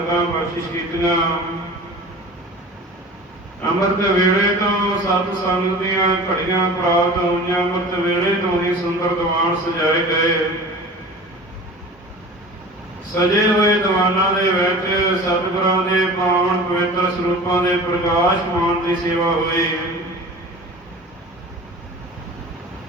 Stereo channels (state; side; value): normal; both; correlation 0.39